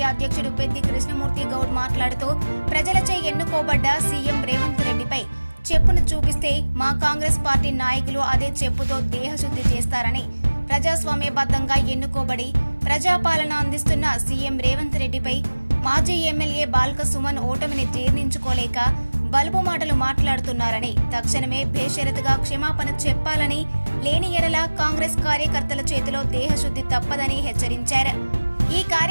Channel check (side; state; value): both; inverted; correlation -1.00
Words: అధ్యక్షుడు పెద్ది కృష్ణమూర్తి గౌడ్ మాట్లాడుతూ ప్రజలచే ఎన్నుకోబడ్డ సీఎం రేవంత్ రెడ్డిపై చెప్పును చూపిస్తే మా కాంగ్రెస్ పార్టీ నాయకులు అదే చెప్పుతో దేహశుద్ధి చేస్తారని, ప్రజాస్వామ్యబద్ధంగా ఎన్నుకోబడి ప్రజాపాలన అందిస్తున్న సీఎం రేవంత్ రెడ్డిపై మాజీ ఎమ్మెల్యే బాల్క సుమన్ ఓటమిని జీర్ణించుకోలేక బలుపు మాటలు మాట్లాడుతున్నారని, తక్షణమే బేషరతుగా క్షమాపణ చెప్పాలని, లేని ఎడల కాంగ్రెస్ కార్యకర్తల చేతిలో దేహశుద్ధి తప్పదని హెచ్చరించారు. ఈ